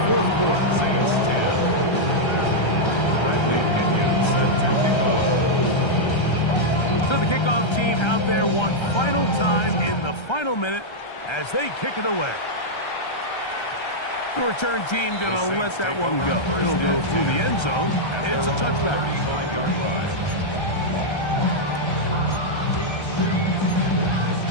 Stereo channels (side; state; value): right; late; 1.3 ms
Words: fourth quarter. Saints 10. Bradley Pinion set to kick off. So the kickoff team out there one final time in the final minute as they kick it away. The return team going to let that one go. It'll go through the end zone. It's a touchback. 35-yard run.